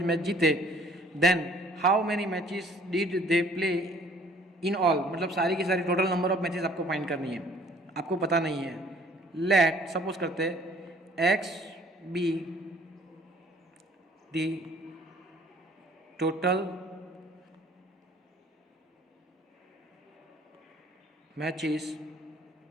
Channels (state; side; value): normal; both; correlation 0.56